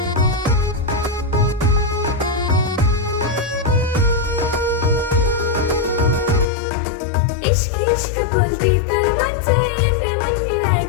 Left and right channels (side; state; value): right; drops out; at 6.5 s